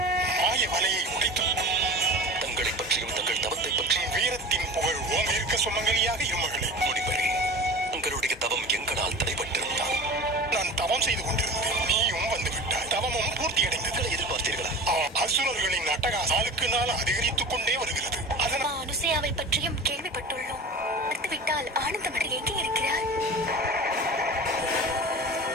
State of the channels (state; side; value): normal; both; correlation 0.34